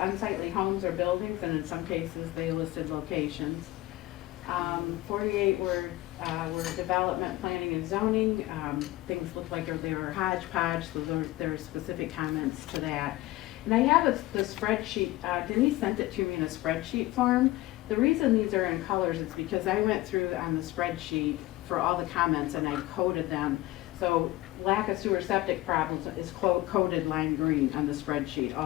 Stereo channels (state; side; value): quieter; right; 17.8 dB